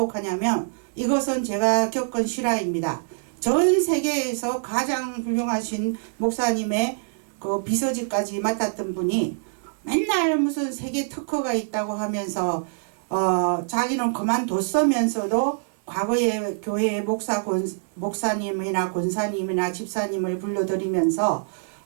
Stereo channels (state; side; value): silent; left; 62 dB below the other